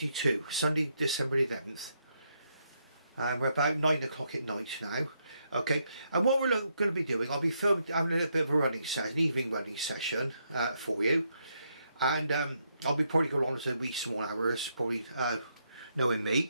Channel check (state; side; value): inverted; both; correlation -0.78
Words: Sunday, December the 11th. We're about 9 o'clock at night now. Okay, and what we're going to be doing, I'll be having a little bit of a running session, an evening running session for you, and I'll be probably going on to wee small hours, probably knowing